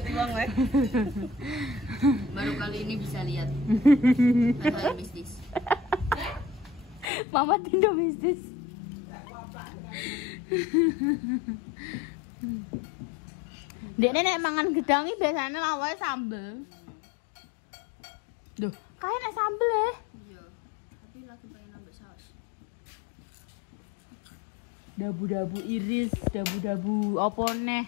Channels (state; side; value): drops out; right; at 7.1 s